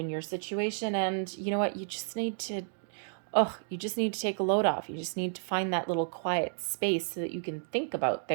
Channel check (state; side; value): silent; left; digital silence